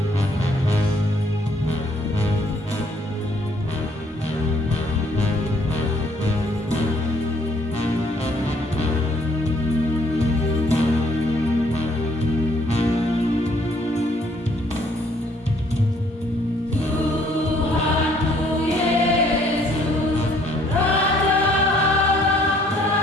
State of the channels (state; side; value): normal; both; correlation 0.64